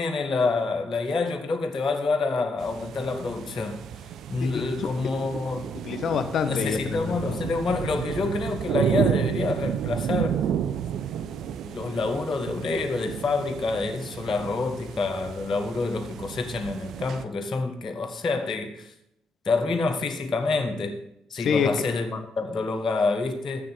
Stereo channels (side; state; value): both; normal; correlation 0.75